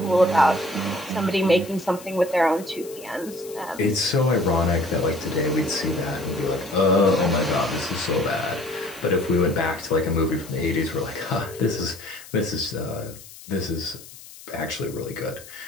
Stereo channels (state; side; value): noise; left; hiss, 18 dB below the sound